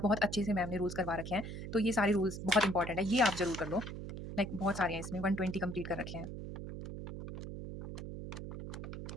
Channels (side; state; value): right; noise; hum, 8 dB below the sound